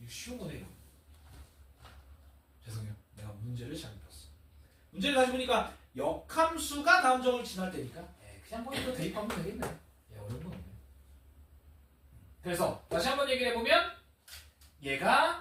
쉬운 거네 이거. 죄송해요. 내가 문제를 잘못 봤어. 문제를 다시 보니까 역함수가 다음 점을 지날 때니까 그냥 뭐 이거 대입하면 되겠네. 어려운 건 없네. 그래서 다시 한번 얘기를 해보면 얘가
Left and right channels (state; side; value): identical; both; correlation 1.00